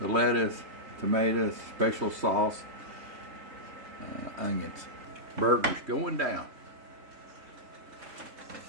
the lettuce, tomatoes, special sauce, onions. Burgers going down.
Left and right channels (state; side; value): late; left; 3.2 ms